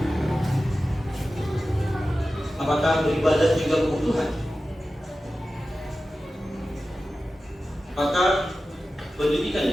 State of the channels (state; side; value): normal; both; correlation 0.94